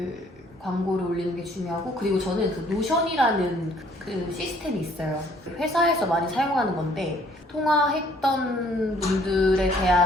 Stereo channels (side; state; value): both; normal; correlation 0.61